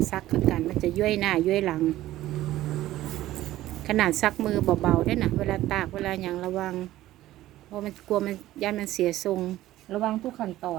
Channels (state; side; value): quieter; left; 15.0 dB